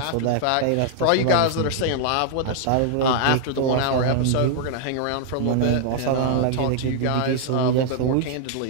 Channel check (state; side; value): different; both; correlation 0.00